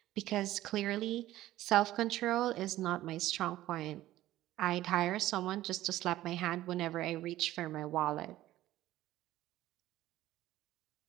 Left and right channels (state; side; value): quieter; left; 15.0 dB